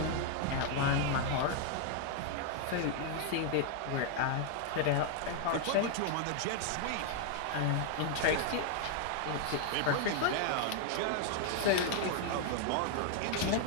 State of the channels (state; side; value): different; both; correlation 0.00